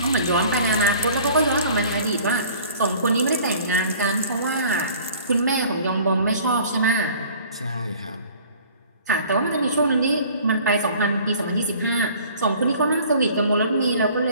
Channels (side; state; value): both; inverted; correlation -0.50